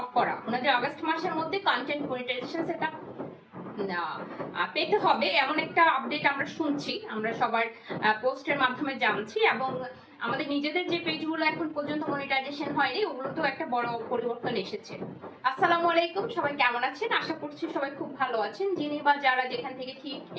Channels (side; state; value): both; identical; correlation 1.00